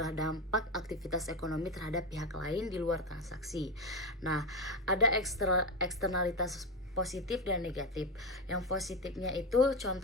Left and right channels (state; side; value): normal; both; correlation 0.14